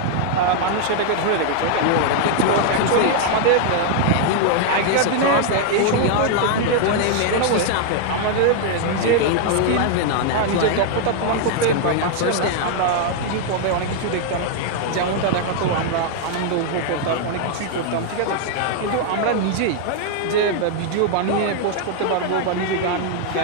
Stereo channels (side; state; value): both; different; correlation 0.00